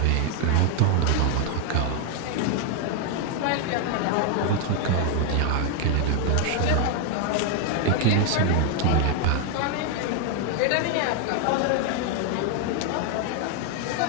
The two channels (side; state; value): both; different; correlation 0.01